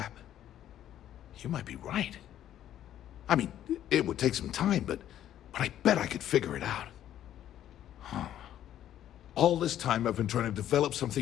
You might be right. I mean, it would take some time, but I bet I could figure it out. Huh. All this time I've been trying to develop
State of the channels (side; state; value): right; quieter; 11.5 dB